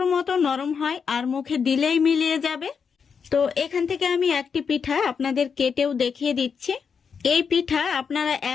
মতো নরম হয় আর মুখে দিলেই মিলিয়ে যাবে। তো এখান থেকে আমি একটি পিঠা আপনাদের কেটেও দেখিয়ে দিচ্ছি। এই পিঠা আপনারা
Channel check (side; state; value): right; quieter; 6.2 dB